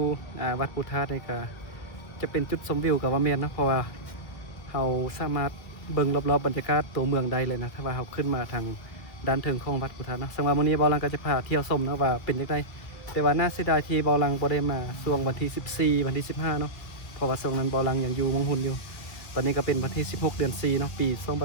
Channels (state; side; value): late; right; 1.9 ms